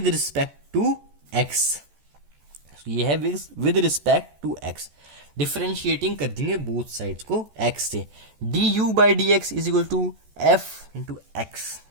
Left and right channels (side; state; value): left; late; 14 ms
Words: respect to X, ये है with respect to X, differentiating कर देंगे बोथ साइड्स को एक्स से, D U by D X is equal to F into x,